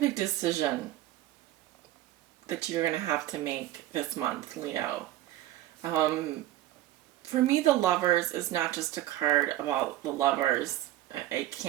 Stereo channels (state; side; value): quieter; left; 14.3 dB